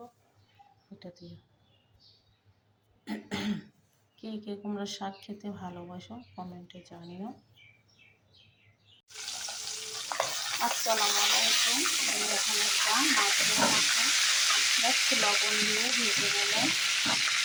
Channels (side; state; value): both; identical; correlation 1.00